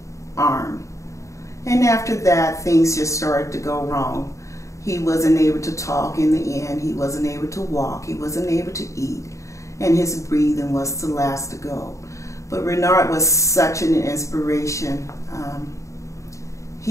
arm. And after that, things just started to go wrong. He wasn't able to talk in the end. He wasn't able to walk. He wasn't able to eat. And his breathing was the last to go. But Renard was such an inspiration.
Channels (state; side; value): late; right; 0.15 ms